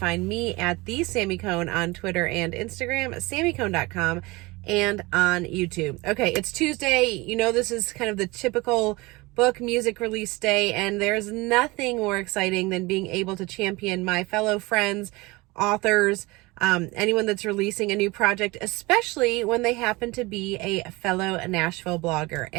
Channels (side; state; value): left; quieter; 23.2 dB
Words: me at the Sammy Cone on Twitter and Instagram, sammycone.com, and on YouTube. Okay, it's Tuesday. You know, this is kind of the typical book music release day, and there's nothing more exciting than being able to champion my fellow friends, authors, anyone that's releasing a new project, especially when they happen to be a fellow Nashville blogger.